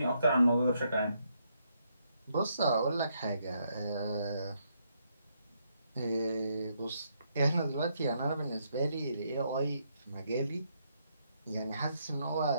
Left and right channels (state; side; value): inverted; both; correlation -0.76